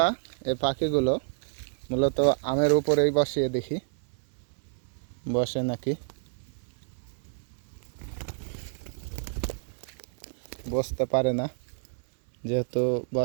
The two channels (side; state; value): left; silent; 59 dB below the other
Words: এই পাখিগুলো মূলত আমের উপরেই বসিয়ে দেখি বসে নাকি। বসতে পারে না, যেহেতু